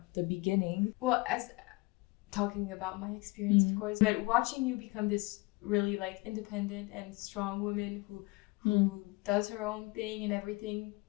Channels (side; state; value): right; quieter; 23.9 dB